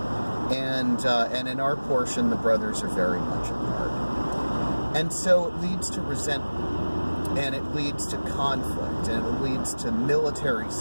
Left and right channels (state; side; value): inverted; both; correlation -1.00